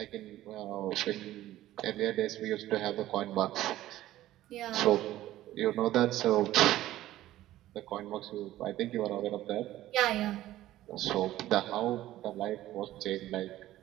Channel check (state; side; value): quieter; left; 14.6 dB